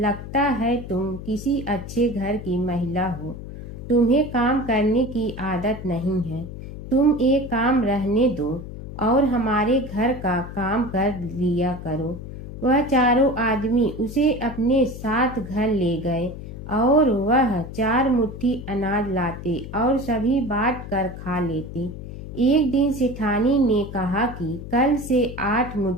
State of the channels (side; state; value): left; noise; hum, 11 dB below the sound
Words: है तुम किसी अच्छे घर की महिला हो। तुम्हें काम करने की आदत नहीं है। तुम एक काम रहने दो और हमारे घर का काम कर लिया करो। वह चारों आदमी उसे अपने साथ घर ले गए और वह 4 मुट्ठी अनाज लाते और सभी बांट कर खा लेते। एक दिन सेठानी ने कहा कि कल से 8